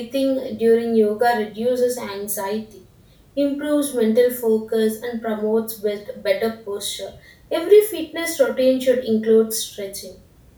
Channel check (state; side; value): identical; both; correlation 1.00